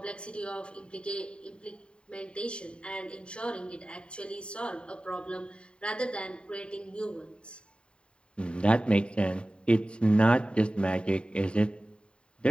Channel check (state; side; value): late; right; 0.053 ms